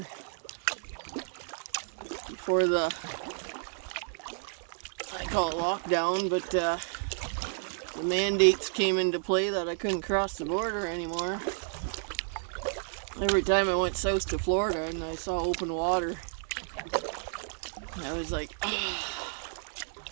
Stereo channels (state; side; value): silent; left; digital silence